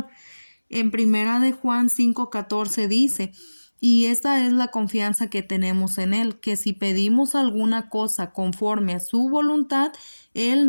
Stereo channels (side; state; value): both; inverted; correlation -1.00